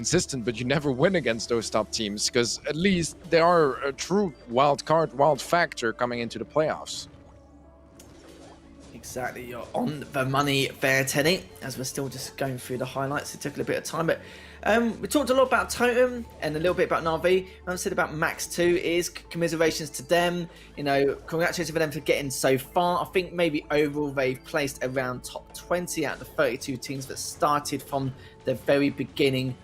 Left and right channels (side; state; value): both; identical; correlation 1.00